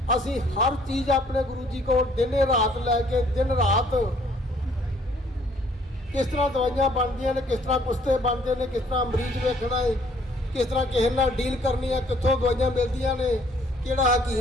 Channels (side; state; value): both; normal; correlation 0.62